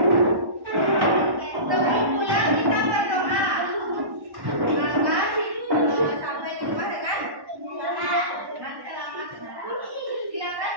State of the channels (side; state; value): left; late; 1.1 ms